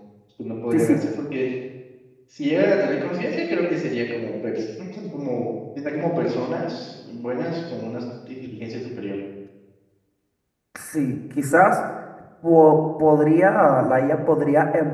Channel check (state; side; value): identical; both; correlation 1.00